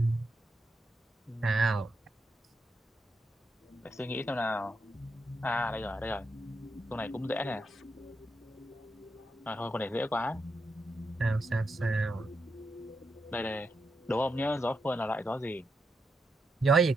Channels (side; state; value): both; normal; correlation 0.83